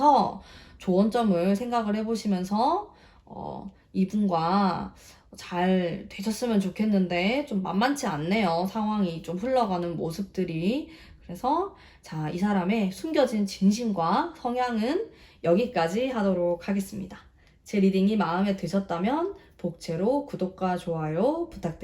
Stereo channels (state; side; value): identical; both; correlation 1.00